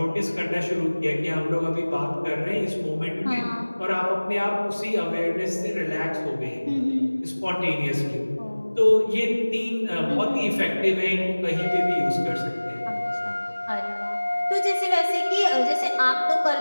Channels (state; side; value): inverted; both; correlation -1.00